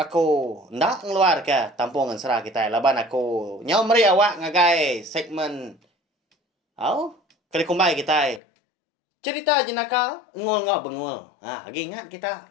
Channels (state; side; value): drops out; right; at 8.4 s